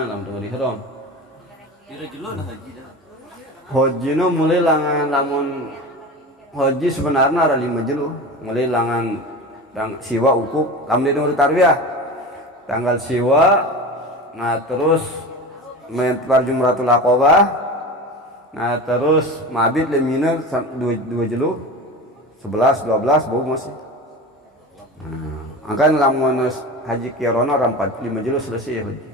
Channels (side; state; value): both; normal; correlation 0.30